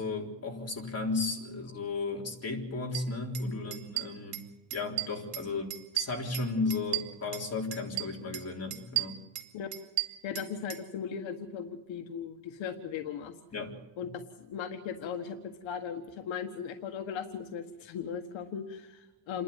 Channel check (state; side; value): normal; both; correlation 0.05